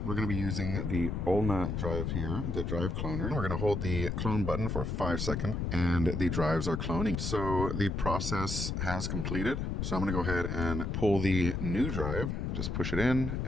We're going to be using the ULNA drive here, the drive cloner. We're going to hold the clone button for 5 seconds, and the drives are cloning. So the process has completed. So I'm going to go ahead and pull the new drive, just push it in,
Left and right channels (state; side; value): noise; left; rumble, 2 dB below the sound